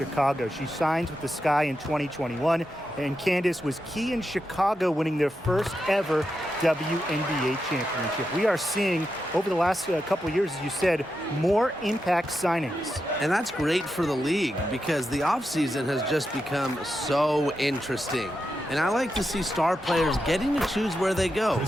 She signs with the Sky in 2021, and Candace was key in Chicago winning their first ever WNBA championship. We are seeing, over the last couple of years, as you said, more impact signings. And that's great for the league because the offseason has just become so interesting. And I like to see star players getting to choose where they go.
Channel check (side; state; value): both; normal; correlation 0.87